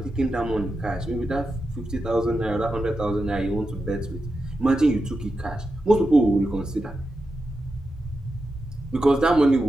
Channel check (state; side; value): normal; both; correlation 0.89